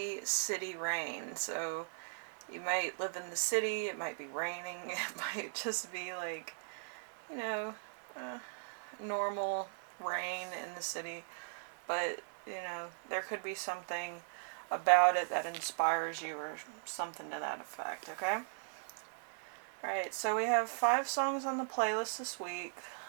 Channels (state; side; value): silent; left; 52 dB below the other